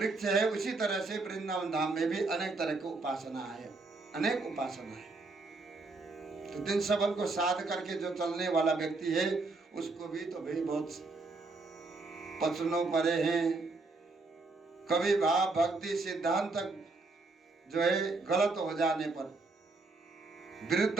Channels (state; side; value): quieter; left; 3.6 dB